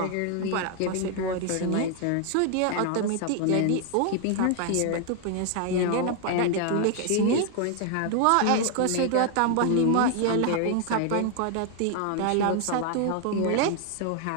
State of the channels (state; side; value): different; both; correlation 0.00